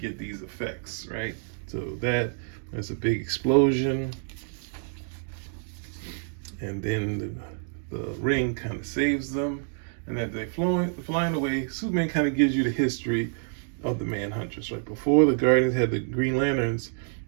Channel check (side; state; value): left; silent; digital silence